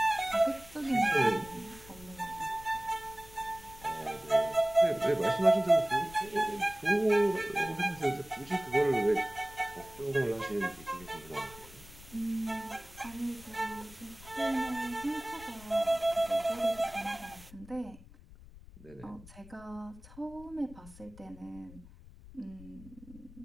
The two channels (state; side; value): noise; left; rumble, 19 dB below the sound